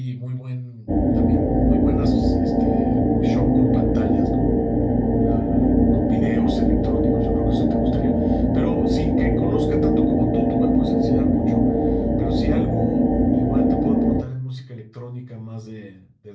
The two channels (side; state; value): both; identical; correlation 1.00